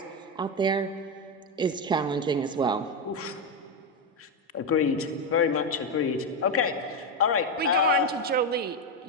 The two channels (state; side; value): normal; both; correlation 0.09